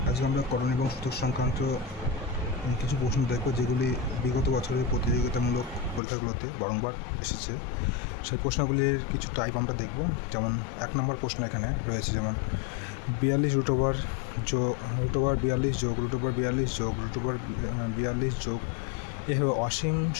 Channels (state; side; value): drops out; right; at 6.0 s